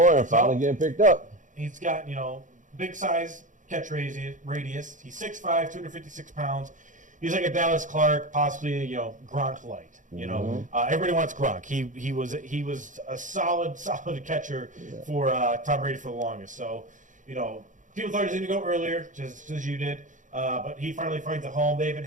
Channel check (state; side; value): late; left; 0.37 ms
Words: finally getting picked up. He's got, big size catch radius. He's 6'5", 256 pounds. He's like a Dallas Clark, possibly Gronk light. Everybody wants Gronk. He was a solid catcher for Tom Brady for the longest. So, people thought he was going to go earlier, just as you did. But he finally finds a home. They haven't